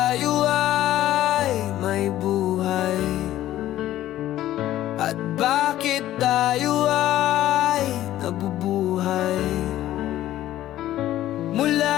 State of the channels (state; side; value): quieter; right; 13.7 dB